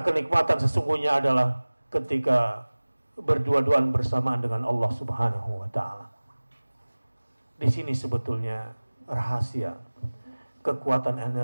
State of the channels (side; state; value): both; inverted; correlation -1.00